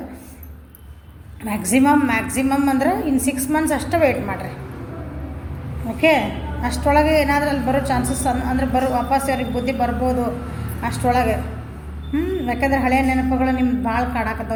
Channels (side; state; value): both; identical; correlation 1.00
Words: ಮ್ಯಾಕ್ಸಿಮಮ್ ಅಂದ್ರೆ ಇನ್ನು 6 ಮಂತ್ಸ್ ಅಷ್ಟೇ ವೆಯ್ಟ್ ಮಾಡಿರಿ. ಓಕೆ, ಅಷ್ಟರೊಳಗೆ ಏನಾದರೂ ಅಲ್ಲಿ ಬರೋ ಚಾನ್ಸಸ್ ಅಂದರೆ ವಾಪಸ್ ಅವ್ರಿಗೆ ಬುದ್ಧಿ ಬರ್ಬೋದು ಅಷ್ಟರೊಳಗೆ. ಯಾಕಂದ್ರೆ ಹಳೆಯ ನೆನಪುಗಳು ನಿಮ್ಗೆ ಭಾಳ